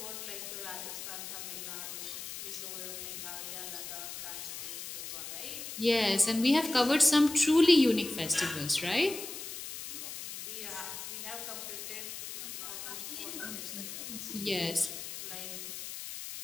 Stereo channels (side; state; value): left; noise; hiss, 8 dB below the sound